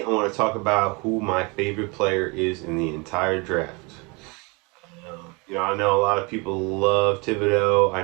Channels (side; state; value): left; quieter; 28.8 dB